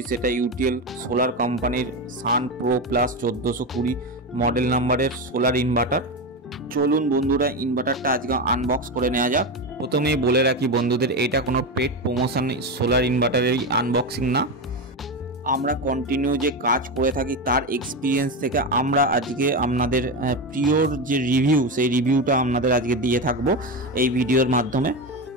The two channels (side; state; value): both; normal; correlation 0.16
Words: সেটা ইউটিএল সোলার কোম্পানির সান প্রো প্লাস 1420 মডেল নাম্বারের সোলার ইনভার্টার। চলুন বন্ধুরা ইনভার্টারটা আজকে আনবক্স করে নেওয়া যাক। প্রথমেই বলে রাখি বন্ধুদের, এটা কোনো পেড প্রমোশন সোলার ইনভার্টারের আনবক্সিং না। আমরা কন্টিনিউ যে কাজ করে থাকি তার এক্সপিরিয়েন্স থেকে আমরা আজকে আপনাদের প্রিয়র যে রিভিউ সেই রিভিউটা আপনাদের আজকে দিয়ে থাকবো এই ভিডিওর মাধ্যমে।